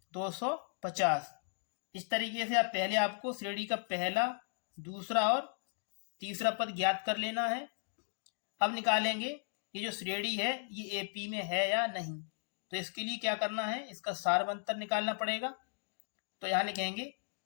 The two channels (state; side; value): silent; right; digital silence